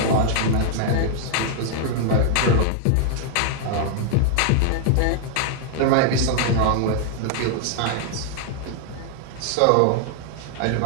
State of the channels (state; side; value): different; both; correlation 0.00